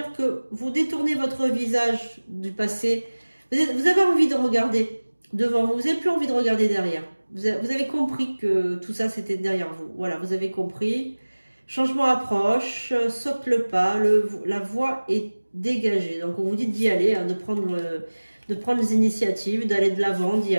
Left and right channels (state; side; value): inverted; both; correlation -1.00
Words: que vous détournez votre visage du passé. Vous avez envie de regarder devant vous. Vous n'avez plus envie de regarder derrière. Vous avez compris que tout ça, c'était derrière vous. Voilà, vous avez compris. Changement approche, saute le pas, la voie est dégagée. Donc, on vous dit d'y aller, hein, de prendre les initiatives, d'aller de l'avant, d'y